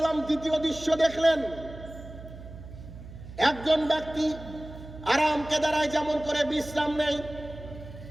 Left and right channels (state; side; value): noise; right; hum, 14 dB below the sound